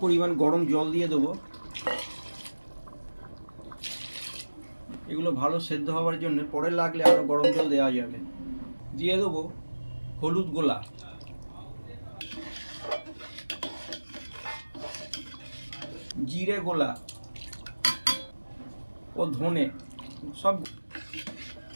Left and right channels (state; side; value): inverted; both; correlation -1.00